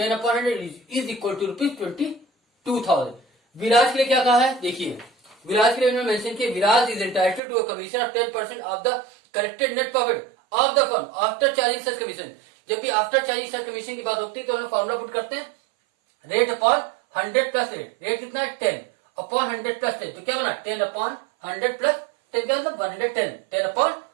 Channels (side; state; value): left; drops out; at 7.4 s